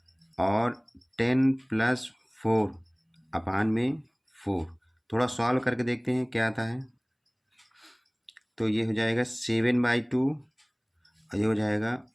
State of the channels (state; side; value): identical; both; correlation 1.00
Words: और 10 + 4 अपान में 4। थोड़ा सॉल्व करके देखते हैं क्या आता है। तो ये हो जाएगा 7/2 और ये हो जाएगा